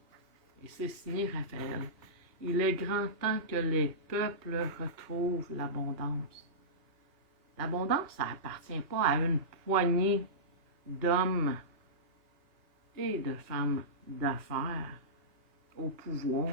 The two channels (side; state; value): left; late; 2.8 ms